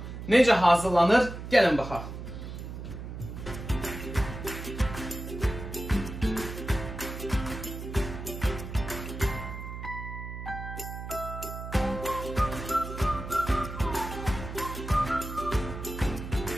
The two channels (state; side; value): noise; right; hum, 9 dB below the sound